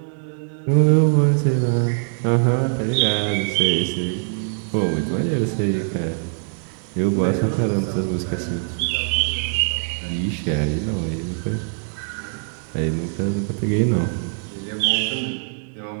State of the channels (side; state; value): left; silent; digital silence